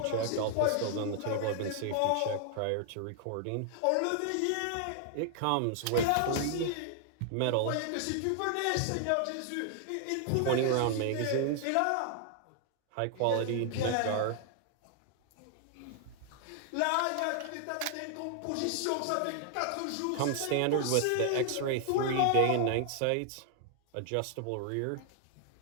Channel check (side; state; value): both; different; correlation 0.00